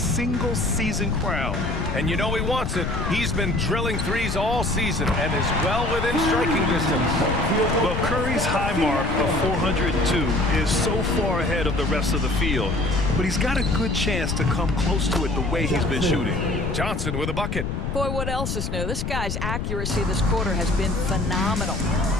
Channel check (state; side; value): noise; left; rumble, 2 dB below the sound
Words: crown. And you know he wants it. He's been drilling 3s all season and is well within striking distance. Well, Curry's high mark of 402 is so far ahead of the rest of the field, but he's got a good chance to come close to it the way he's been shooting. Johnson with a bucket. Boy, what else is new? This guy's accuracy this quarter has been phenomenal.